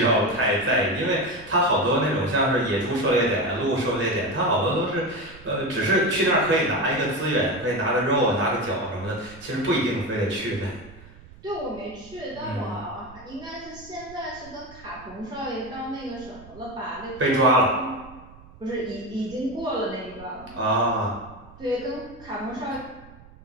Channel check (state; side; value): noise; right; rumble, 21 dB below the sound